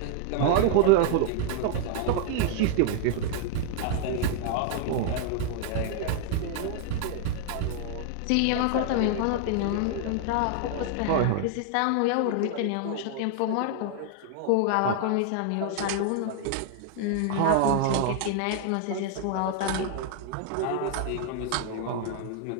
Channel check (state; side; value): different; both; correlation 0.00